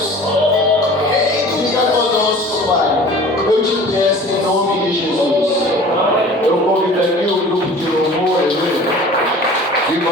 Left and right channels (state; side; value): normal; both; correlation 0.44